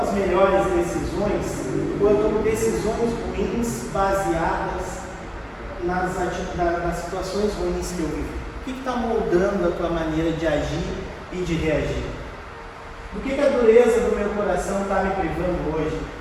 melhores decisões ou eu tomo decisões ruins baseadas nas situações ruins que eu vivi? O que está moldando a tua maneira de agir e de reagir? Do que a dureza do meu coração está me privando hoje?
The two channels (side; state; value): both; identical; correlation 1.00